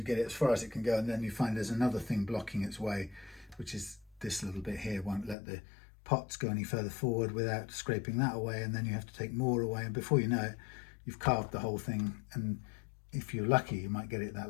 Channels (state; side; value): drops out; right; at 5.4 s